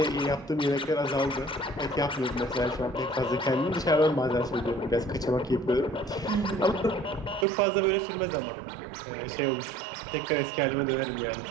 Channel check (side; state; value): left; drops out; at 7.5 s